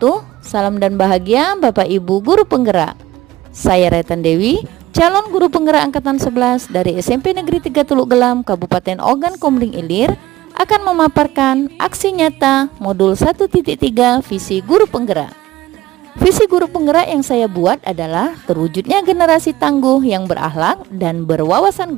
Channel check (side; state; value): left; quieter; 16.4 dB